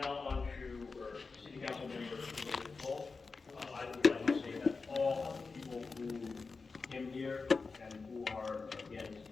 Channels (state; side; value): quieter; right; 4.4 dB